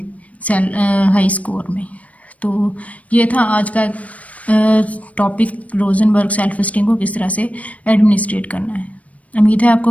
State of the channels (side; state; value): right; late; 0.067 ms